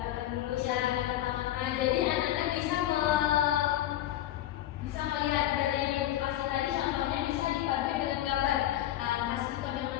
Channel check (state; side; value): quieter; right; 13.3 dB